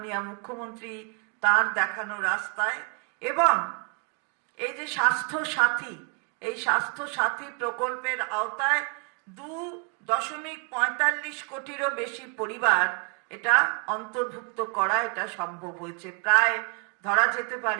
মুখ্যমন্ত্রী তার দেখানো রাস্তায়। এবং এই যে স্বাস্থ্য সাথী, এই স্বাস্থ্য সাথী প্রকল্পের আওতায় 2.45 কোটিরও বেশি পরিবার এটা অন্তর্ভুক্ত করা এটা সম্ভব হয়েছে। প্রায় ধরা যেতে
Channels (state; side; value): quieter; left; 37.6 dB